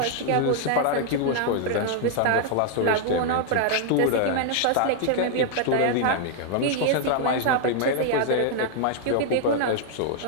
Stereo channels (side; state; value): both; different; correlation 0.00